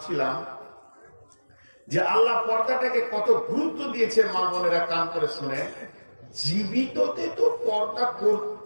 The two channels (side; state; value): both; inverted; correlation -1.00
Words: যে আল্লাহ পর্দাটাকে কত গুরুত্ব দিয়েছে। মা বোনেরা কান করে শুনে, জীবিততে তো পর্দা